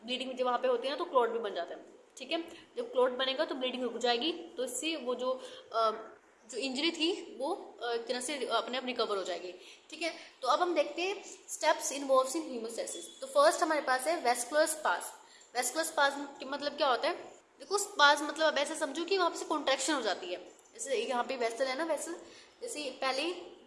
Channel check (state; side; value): identical; both; correlation 1.00